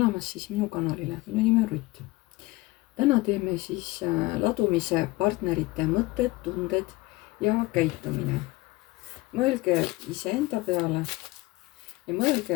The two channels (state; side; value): quieter; right; 20.9 dB